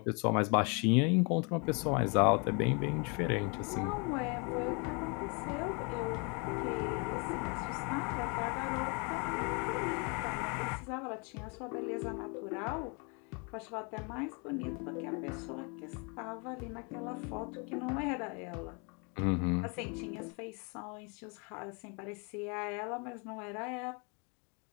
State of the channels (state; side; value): quieter; right; 33.7 dB